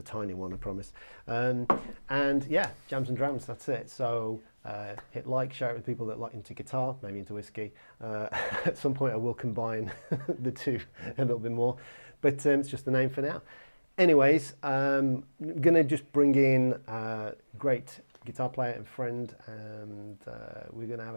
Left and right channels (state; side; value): inverted; both; correlation -1.00